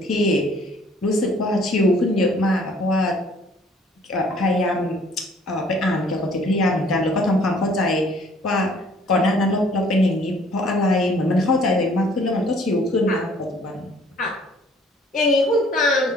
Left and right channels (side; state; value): both; normal; correlation 0.58